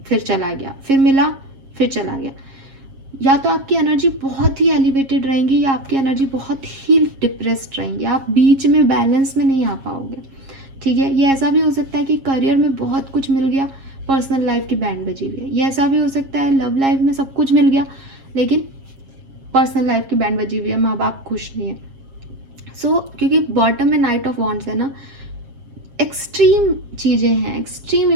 फिर चला गया, फिर मिला फिर चला गया। या तो आपकी एनर्जी बहुत ही एलिवेटेड रहेंगी या आपकी एनर्जी बहुत ही डिप्रेस्ड रहेंगी, आप बीच में बैलेंस में नहीं आ पाओगे, ठीक है। ये ऐसा भी हो सकता है कि करियर में बहुत कुछ मिल गया, पर्सनल लाइफ की बैंड बजी हुई है। ये ऐसा भी हो सकता है लव लाइफ में सब कुछ मिल गया लेकिन पर्सनल लाइफ की बैंड बजी हुई है, माँ बाप खुश नहीं है। क्योंकि बॉटम में नाइट ऑफ वॉन्ड्स है ना, एक्सट्रीम चीज़ें हैं, एक्सट्रीम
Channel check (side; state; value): left; late; 7.4 ms